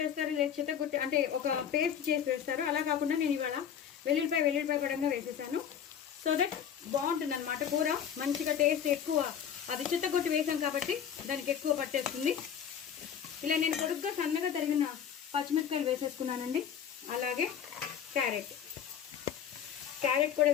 వేస్తారు, లేదా చిత్తగుట్టి అంటే ఒక పేస్ట్ చేసి వేస్తారు. అలా కాకుండా నేను ఇవాళ వెల్లుల్లిపాయ పడంగా వేసేసాను. సో దట్ బాగుంటుంది అనమాట కూర. మంచిగా టేస్ట్ ఎక్కువ, అది చిత్తగుట్టి వేసాం కాబట్టి దానికి ఎక్కువ పట్టేస్తుంది. ఇలా నేను పొడుగ్గా సన్నగా తరిగిన పచ్చిమిరపకాయలు వేసేసుకున్నానండి. అలాగే క్యారెట్ కూడా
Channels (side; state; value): right; quieter; 8.5 dB